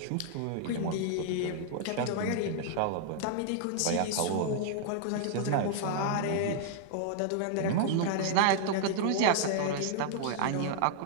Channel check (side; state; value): both; different; correlation -0.01